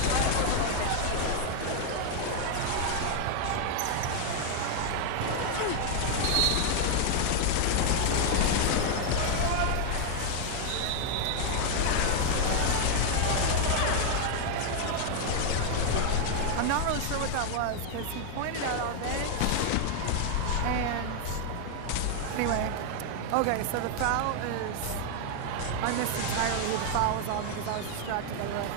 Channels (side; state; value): both; different; correlation 0.00